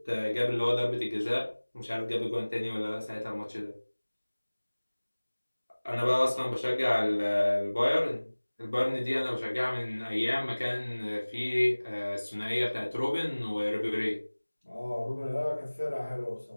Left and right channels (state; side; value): inverted; both; correlation -1.00